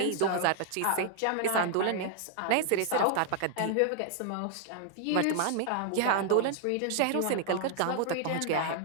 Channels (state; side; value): different; both; correlation 0.00